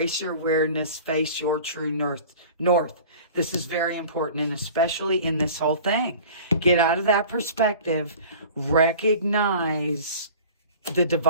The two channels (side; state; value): both; inverted; correlation -0.42